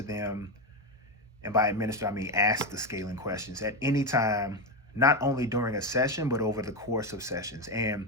And by administer, I mean ask the scaling questions at any time, not only during a session, but over the course of sessions.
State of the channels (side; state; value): both; normal; correlation 0.12